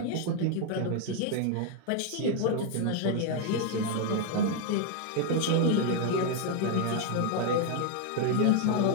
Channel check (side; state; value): both; different; correlation 0.01